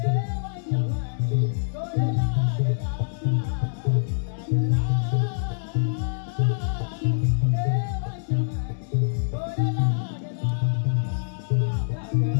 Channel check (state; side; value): silent; right; 62 dB below the other